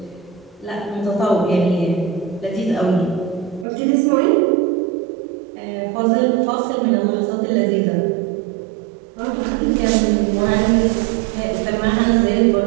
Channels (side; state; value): left; drops out; at 3.7 s